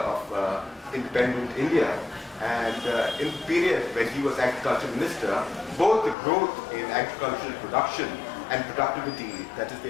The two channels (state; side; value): drops out; right; at 6.2 s